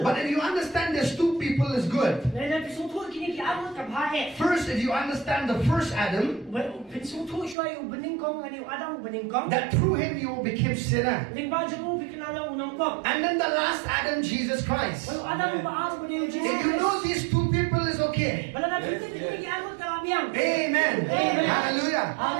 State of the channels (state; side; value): drops out; left; at 7.6 s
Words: But if you understand there's two people, is good. First, if you understand the first Adam, that through him you became sinner. And then the last Adam, Jesus Christ. If you know these two people is okay okay. Amen. Amen. Hallelujah.